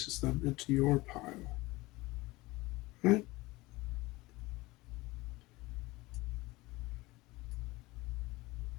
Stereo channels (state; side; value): quieter; right; 20.9 dB